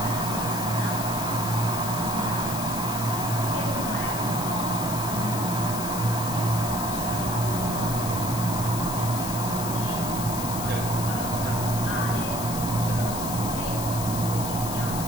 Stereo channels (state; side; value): noise; left; hiss, 7 dB below the sound